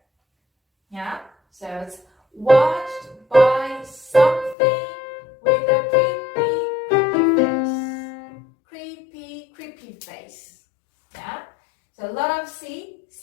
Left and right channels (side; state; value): right; drops out; at 4.5 s